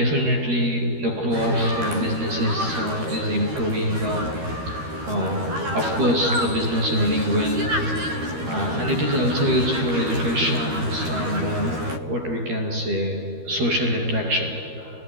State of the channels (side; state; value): left; late; 13 ms